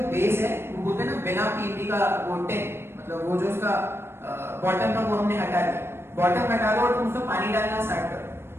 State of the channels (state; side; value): late; left; 0.12 ms